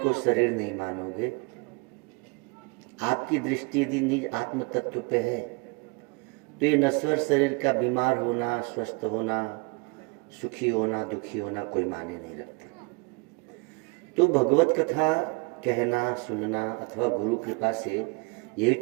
शरीर नहीं मानोगे, आपकी दृष्टि यदि निज आत्म तत्व पे है, तो ये नश्वर शरीर का बीमार होना, स्वस्थ होना, सुखी होना, दुखी होना कोई माने नहीं रखते। तो भगवत कथा कहना, सुनना अथवा गुरु कृपा से यही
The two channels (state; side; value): quieter; left; 29.7 dB